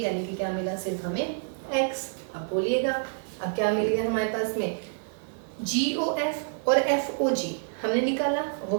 कि क्या मिला सिर्फ हमें x। अब बोलिएगा अब क्या मिल गया हमारे पास में, GOF और FOG हमने निकाला, वो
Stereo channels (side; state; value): left; silent; 59 dB below the other